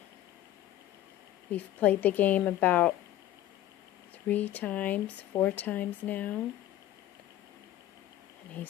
We've played the game about 4 times now. And he's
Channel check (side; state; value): right; quieter; 13.3 dB